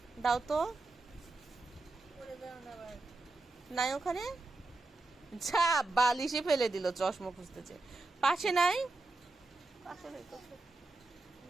দাও তো। নাই ওখানে, যা বালিশে ফেলে দিল চশমা খুঁজতেছে। পাশে নাই,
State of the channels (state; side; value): quieter; left; 3.2 dB